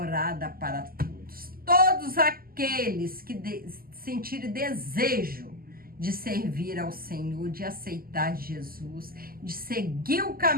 para todos. Todos aqueles que sentirem desejo de servir ao Senhor, de aceitar Jesus, de seguir o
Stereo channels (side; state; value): left; late; 0.42 ms